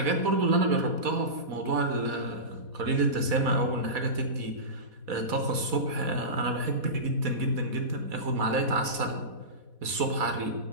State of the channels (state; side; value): late; left; 4.1 ms